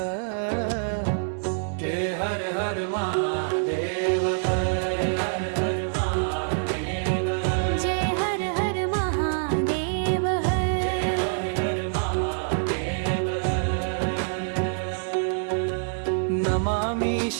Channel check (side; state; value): left; silent; digital silence